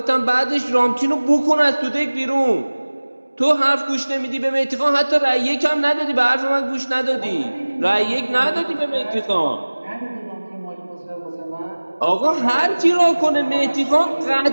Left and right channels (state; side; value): inverted; both; correlation -1.00